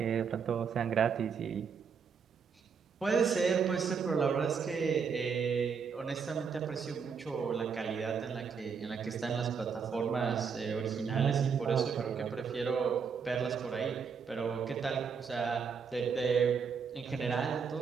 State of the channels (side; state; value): left; quieter; 6.1 dB